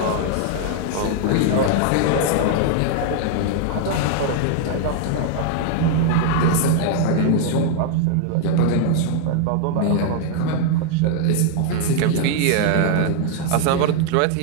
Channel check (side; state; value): both; different; correlation 0.00